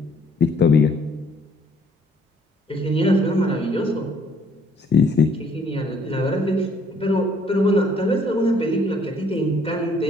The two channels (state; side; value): normal; both; correlation 0.62